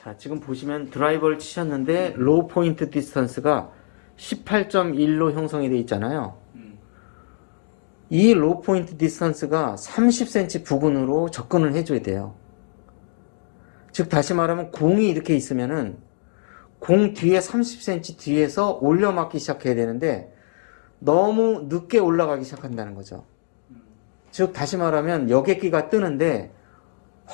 지금 보시면 드라이버를 치셨는데 로우 포인트 디스턴스가 18.1로 형성이 되어 있잖아요. 이 로우 포인트 디스턴스가 30cm 부근으로 접근을 해줘야 돼요. 즉 다시 말하면 공이 이렇게 있으면은 공 뒤에 30cm 뒤에서 올려 맞기 시작해야 되는데 너무 늦게 올라가기 시작한다는 거죠. 즉 다시 말하면 여객기가 뜨는데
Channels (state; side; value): silent; right; digital silence